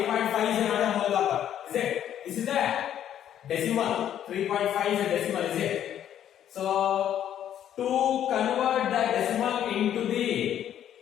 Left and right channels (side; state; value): right; quieter; 10.5 dB